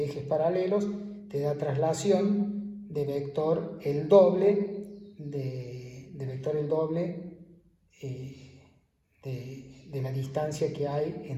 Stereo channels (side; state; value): both; identical; correlation 1.00